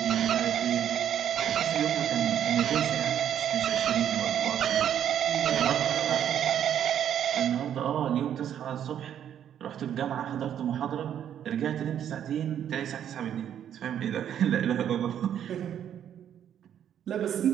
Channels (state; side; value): quieter; left; 9.8 dB